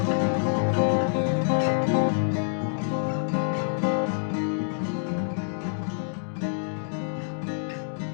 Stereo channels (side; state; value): right; silent; digital silence